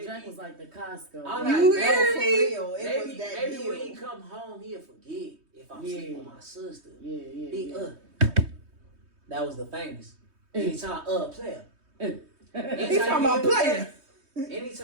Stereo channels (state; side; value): late; left; 3.2 ms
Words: Jack was like the Costco. I'm You like, hear no, me? Real. It was that maybe deal. when he come home, he'll forget if I'm sleeping with my sister. Yeah. He That was the famous. Anytime player. He's talking about player.